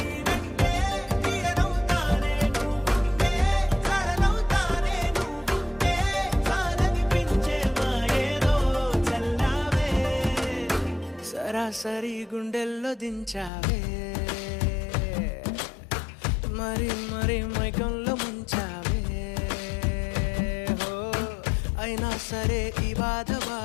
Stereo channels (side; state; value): right; drops out; at 13.5 s